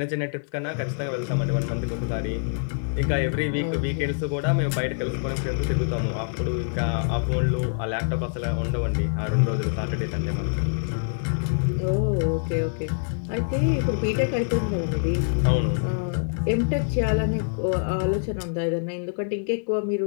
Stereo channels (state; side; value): silent; right; digital silence